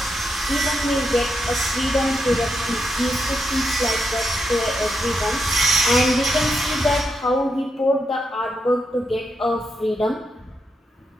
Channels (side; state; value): both; normal; correlation 0.83